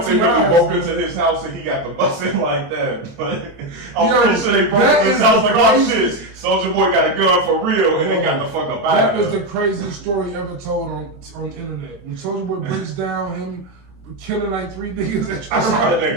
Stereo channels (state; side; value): late; left; 24 ms